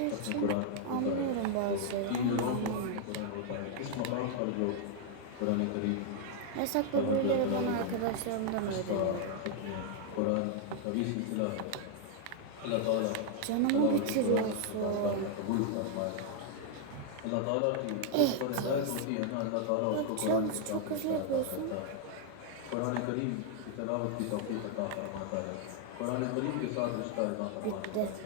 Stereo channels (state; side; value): different; both; correlation 0.00